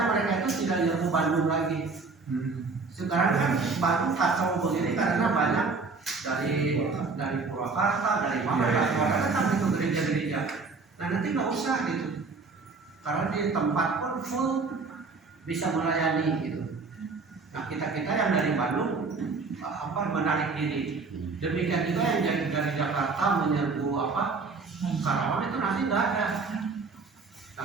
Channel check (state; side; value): quieter; left; 4.3 dB